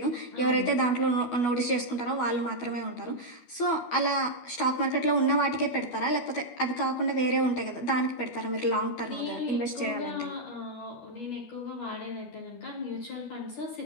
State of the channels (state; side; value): late; right; 12 ms